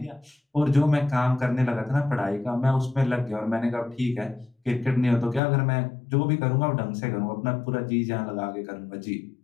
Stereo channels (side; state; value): right; drops out; at 5.4 s